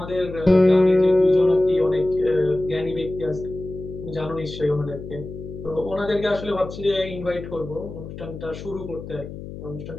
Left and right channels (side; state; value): left; noise; hum, 11 dB below the sound